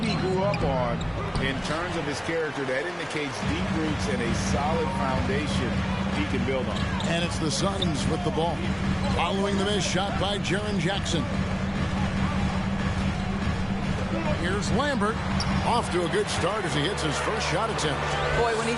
he grew up on. In terms of his character, that indicates deep roots and a solid foundation he can build on. And it's the Suns with the ball. Following the missed shot by Jaren Jackson. Here's Lambert. Off to a good start as he hits his first shot attempt. Boy, when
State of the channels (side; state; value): both; identical; correlation 1.00